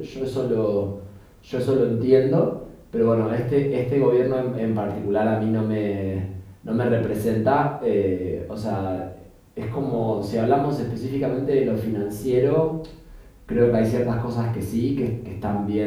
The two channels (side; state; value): both; identical; correlation 1.00